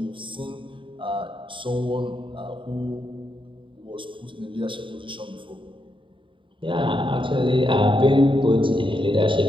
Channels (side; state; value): left; late; 0.24 ms